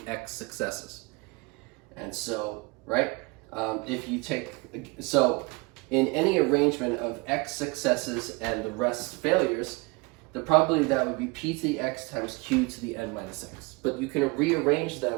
x successes. And so, right, if you take, so in any arrangement of x successes and the rest failures, the probability of that would be p to the x times q to the n minus x. But you can rearrange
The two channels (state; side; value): quieter; left; 27.1 dB